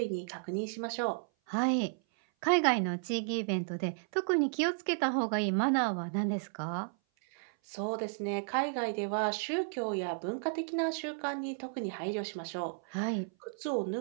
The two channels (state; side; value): silent; left; 56 dB below the other